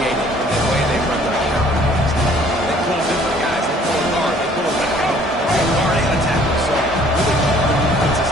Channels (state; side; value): normal; both; correlation 0.57